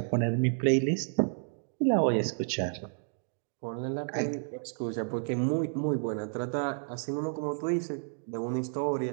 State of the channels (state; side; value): silent; left; digital silence